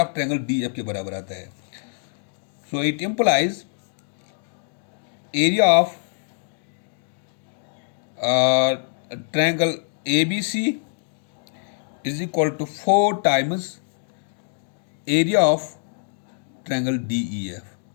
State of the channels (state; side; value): silent; right; digital silence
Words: of triangle DEF के बराबर आता है. So it implies area of triangle ABC is equal to 4 times area of triangle DEF,